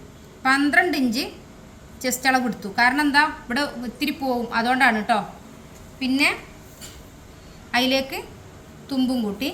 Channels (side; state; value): both; identical; correlation 1.00